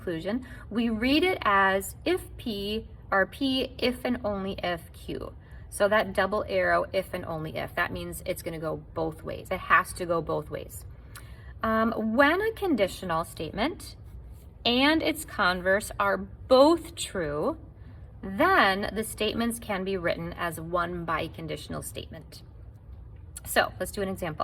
We read it as if P, or P if and only if Q. So that double arrow, if and only if, that means it's going to go both ways. It has to go both ways. When a conditional statement and its converse are both true, then the statements can be written as one biconditional statement. So let's do an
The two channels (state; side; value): identical; both; correlation 1.00